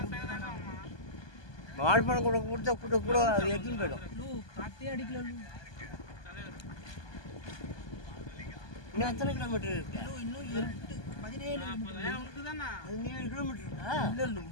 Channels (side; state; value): right; late; 1.2 ms